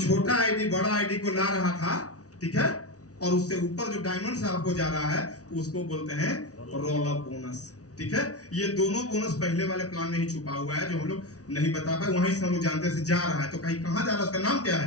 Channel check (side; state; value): right; late; 0.67 ms